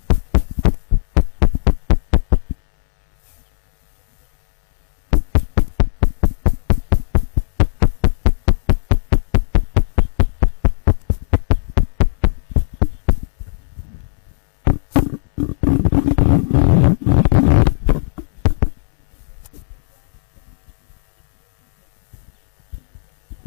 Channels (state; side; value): silent; right; digital silence